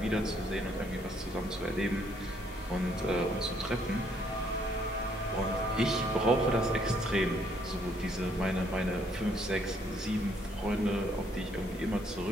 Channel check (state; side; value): normal; both; correlation 0.68